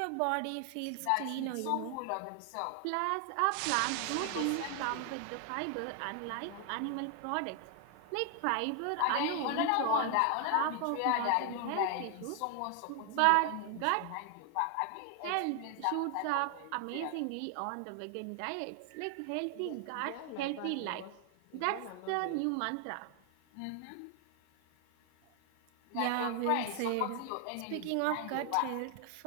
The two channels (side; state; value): both; different; correlation 0.00